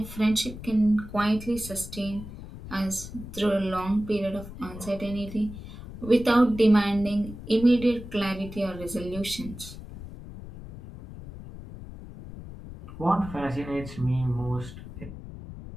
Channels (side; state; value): left; noise; rumble, 13 dB below the sound